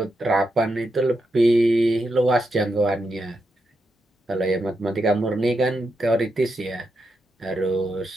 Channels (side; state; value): both; normal; correlation 0.84